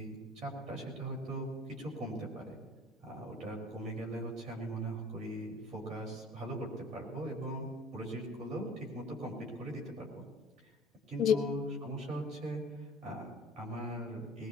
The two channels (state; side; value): normal; both; correlation 0.47